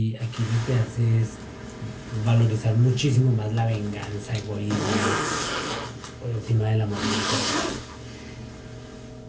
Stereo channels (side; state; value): both; identical; correlation 1.00